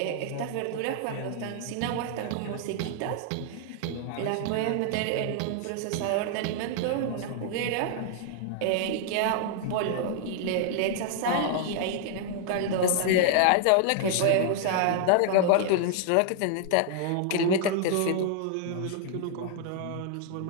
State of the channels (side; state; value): both; different; correlation -0.01